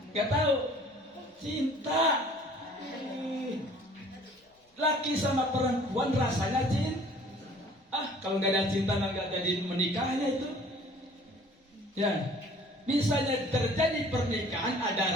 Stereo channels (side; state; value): both; normal; correlation 0.52